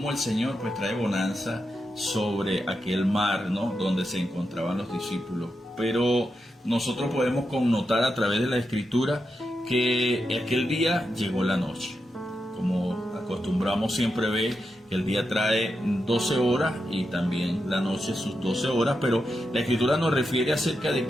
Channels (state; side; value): normal; both; correlation 0.86